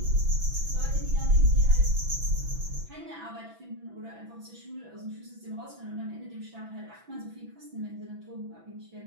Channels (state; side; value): late; left; 6.0 ms